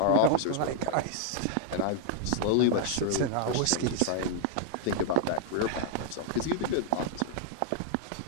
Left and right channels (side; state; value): both; different; correlation -0.01